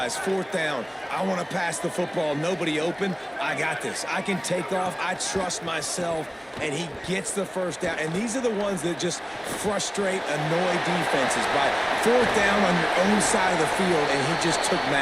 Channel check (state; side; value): identical; both; correlation 1.00